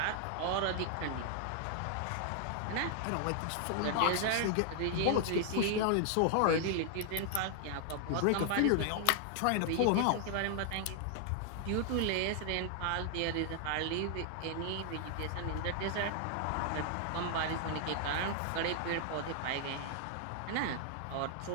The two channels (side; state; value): both; different; correlation 0.00